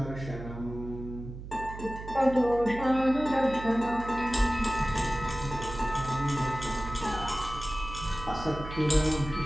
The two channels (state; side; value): noise; right; hum, 11 dB below the sound